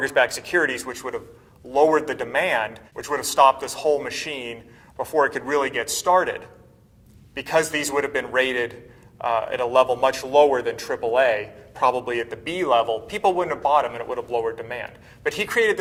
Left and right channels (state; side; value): identical; both; correlation 1.00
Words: securities, which would have lowered the demand, which would have stopped this whole machine before it could really get started. Because these would have been rated at a level much lower than AAA, probably at the B level, people wouldn't have bought them and it would have lowered demand. But he created